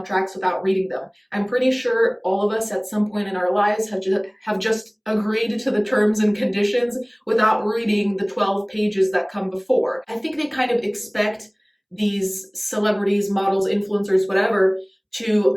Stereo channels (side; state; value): both; identical; correlation 1.00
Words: without reading them. I'm pretty sure all of us at some point in our lives have just agreed to the terms and conditions without reading the 12 pages that come before. I think they kind of expect these celebrities, models, influencers, whatever, to